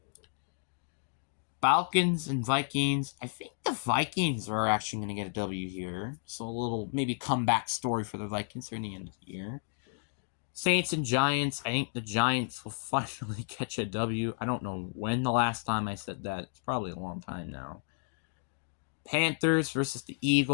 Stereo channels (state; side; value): silent; right; digital silence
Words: Falcons and Vikings. I think the Vikings are actually going to get a W here. So a little maybe comeback story for the Vikings near the end of the year. Saints and Giants. I think the Giants will finally catch a W. I don't know when the last time I said that. It's probably a long time now. Panthers versus the